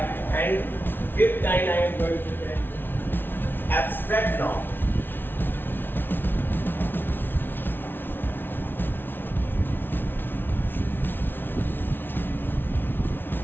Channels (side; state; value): right; late; 0.10 ms